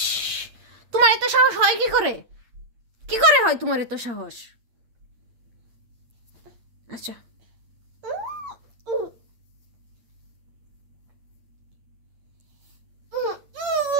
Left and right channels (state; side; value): late; left; 8.8 ms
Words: তোমার এত সাহস হয় কি করে হয় তোমার এত সাহস আচ্ছা